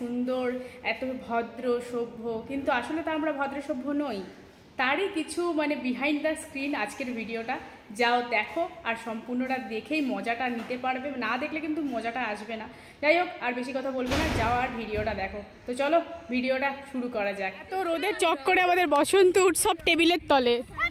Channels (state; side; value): identical; both; correlation 1.00